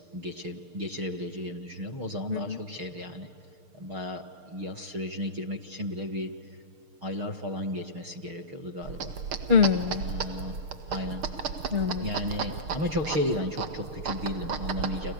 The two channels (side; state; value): left; late; 6.6 ms